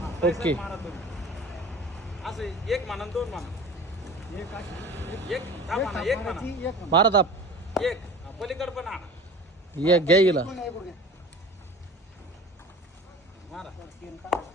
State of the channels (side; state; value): both; normal; correlation 0.40